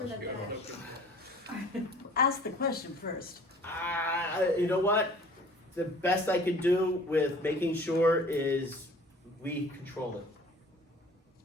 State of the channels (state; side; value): normal; both; correlation 0.49